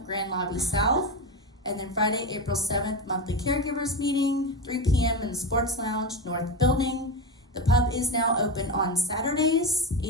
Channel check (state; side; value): normal; both; correlation 0.18